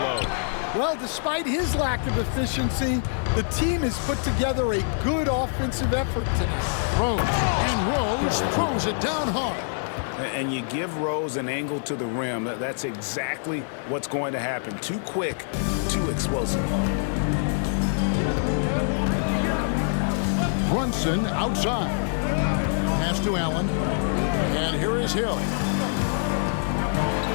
Well, despite his lack of efficiency, the team has put together a good offensive effort tonight. Rose throws it down hard. And you give Rose an angle to the rim. That's exactly what's going to happen. Too quick, too explosive. Brunson outside. Pass to Allen. And here is Hill.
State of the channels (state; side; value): silent; right; digital silence